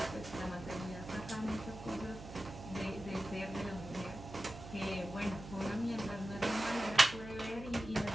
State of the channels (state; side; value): noise; right; hum, 13 dB below the sound